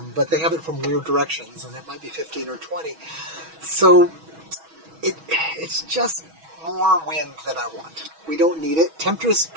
but they have it from weird directions, and it might be 15 or 20. So it's just more wind than I want. We don't need it. Temptress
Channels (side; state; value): left; late; 6.2 ms